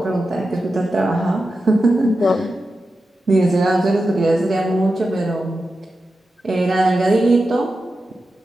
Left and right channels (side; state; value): both; normal; correlation 0.91